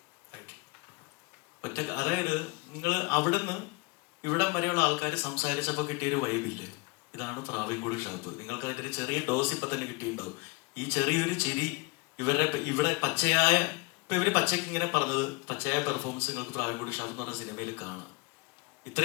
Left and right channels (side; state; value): right; quieter; 26.4 dB